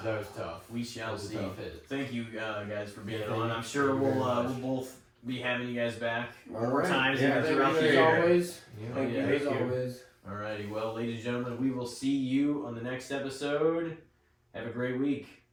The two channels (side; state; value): both; identical; correlation 1.00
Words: that was tough. we That shall was a see. tough hit. Thank you guys for being Yeah, on. thank I'm you. sure Thank you we'll very much. both be having you guys back All more right. times Yeah, even throughout the As year. always. Yeah. Thank you Yeah, as thank you. always. Alrighty, well, ladies and gentlemen, we will see you on the next episode. Have a great week.